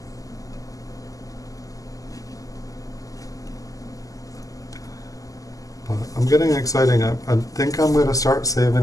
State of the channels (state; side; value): late; right; 0.17 ms